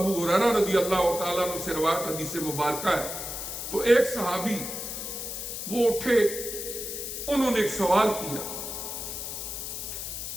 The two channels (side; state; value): left; noise; hiss, 6 dB below the sound